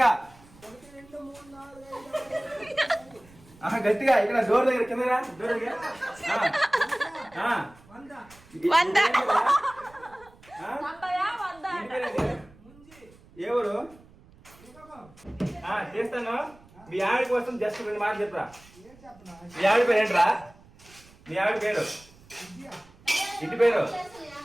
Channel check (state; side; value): noise; right; rumble, 25 dB below the sound